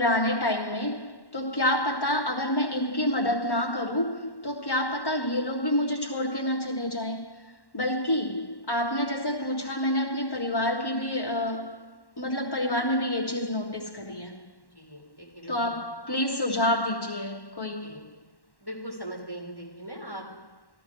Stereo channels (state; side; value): late; right; 1.1 ms